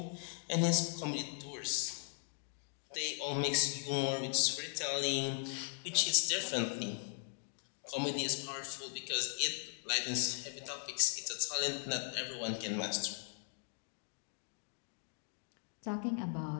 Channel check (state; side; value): silent; right; 52 dB below the other